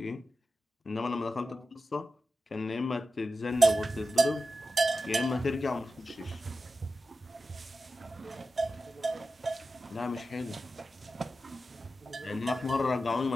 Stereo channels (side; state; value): both; normal; correlation 0.92